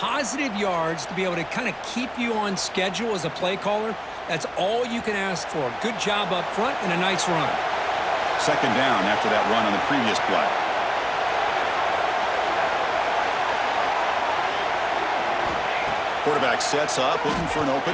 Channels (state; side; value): identical; both; correlation 1.00